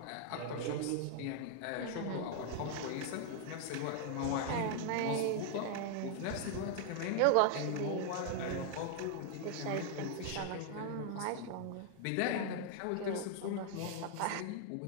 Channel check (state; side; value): different; both; correlation 0.00